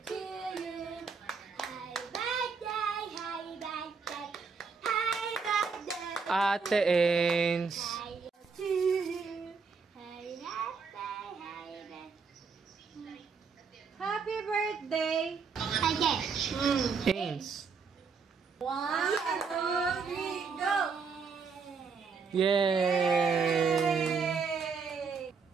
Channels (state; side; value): quieter; left; 5.3 dB